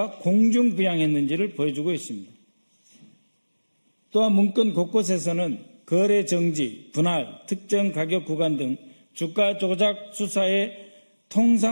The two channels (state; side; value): inverted; both; correlation -1.00